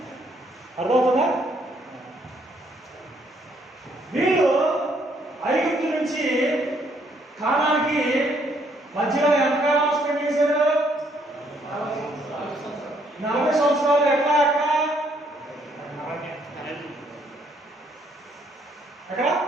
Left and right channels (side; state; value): both; normal; correlation 0.69